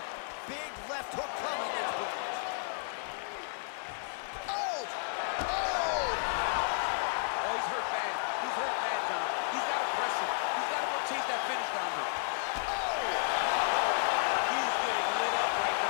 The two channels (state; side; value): silent; right; digital silence